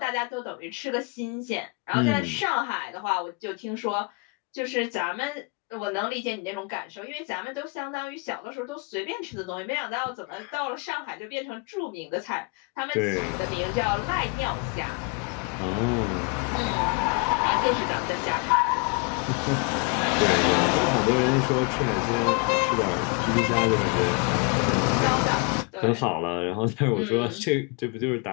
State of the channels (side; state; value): right; quieter; 31.6 dB